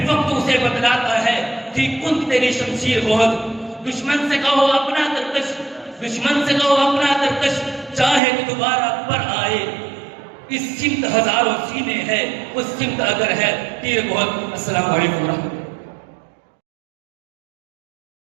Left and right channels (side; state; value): left; drops out; at 8.2 s